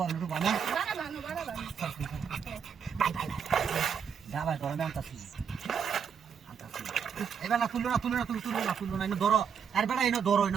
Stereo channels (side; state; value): left; quieter; 7.2 dB